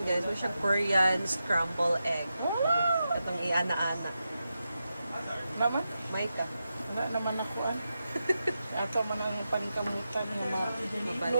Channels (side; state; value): both; inverted; correlation -0.89